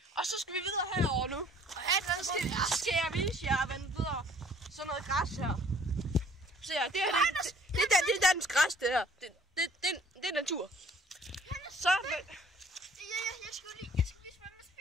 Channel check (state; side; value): normal; both; correlation 0.57